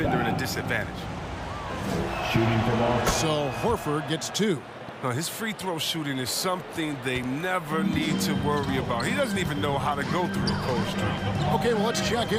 in a disadvantage? So Horford gets 2. Now, his free throw shooting is something they never need to worry about. He doesn't even know how to go through a cold streak. Okay, well, let's check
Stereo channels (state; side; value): identical; both; correlation 1.00